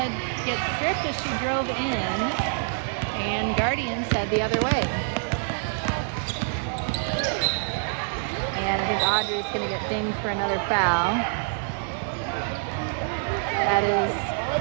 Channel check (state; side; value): silent; left; 61 dB below the other